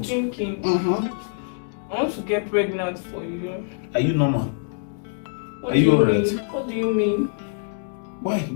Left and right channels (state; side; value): silent; right; digital silence